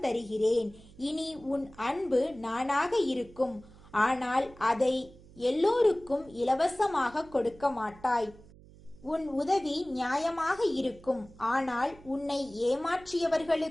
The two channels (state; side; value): noise; right; hum, 22 dB below the sound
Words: தருகிறேன். இனி உன் அன்பு நானாக இருக்கும். ஆனால் அதை எல்லோருக்கும் இலவசமாக கொடுக்க மாட்டாய். உன் உதவி நியாயமாக இருக்கும். ஆனால் உன்னை